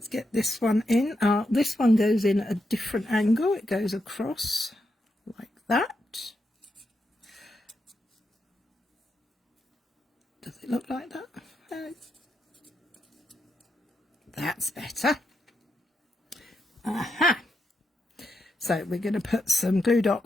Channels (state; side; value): normal; both; correlation 0.84